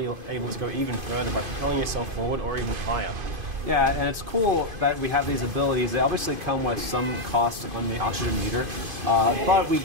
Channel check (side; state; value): left; late; 2.5 ms